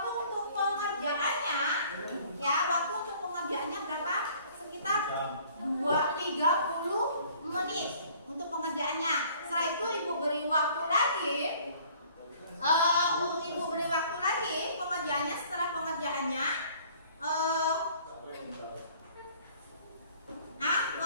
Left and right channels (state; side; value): inverted; both; correlation -0.55